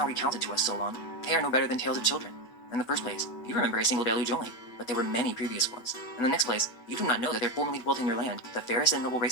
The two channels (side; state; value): right; late; 8.0 ms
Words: recounted to us, Solon, they are no better than tales of children. In the first place, you remember a single deluge only, but there were many previous ones. In the next place, you do not know that there formerly dwelt in your land the fairest and noble